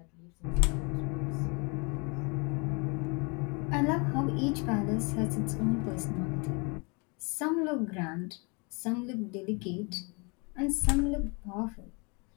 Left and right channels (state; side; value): quieter; right; 31.6 dB